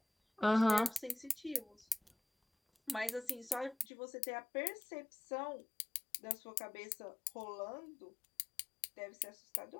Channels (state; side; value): drops out; right; at 3.9 s